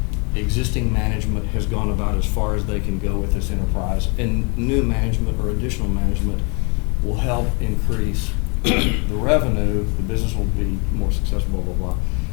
existing management has gone about as far as they can go with this enterprise, and new management or additional management will help increase the revenue, the business will be more successful, blah, blah, blah.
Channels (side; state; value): right; quieter; 33.0 dB